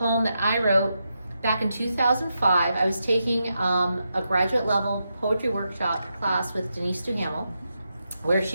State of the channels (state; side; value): inverted; both; correlation -0.85